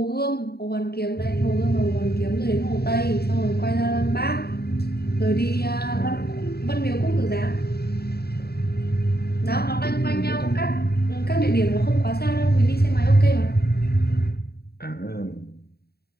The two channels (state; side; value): late; right; 0.46 ms